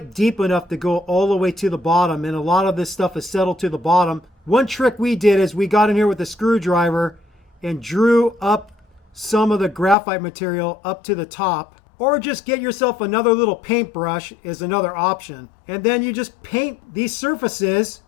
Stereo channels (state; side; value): drops out; right; at 10.0 s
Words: deep enough to go all the way to the bottom, and a lot of this stuff is settled to the bottom. One trick we did is we got in here with a screwdriver and drew up some of the graphite material up to the top. Or just get yourself another little paintbrush is another option. And then you just paint these surfaces